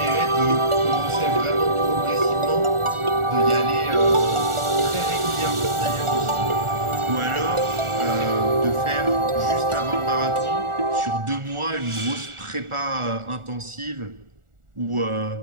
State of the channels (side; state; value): left; late; 1.4 ms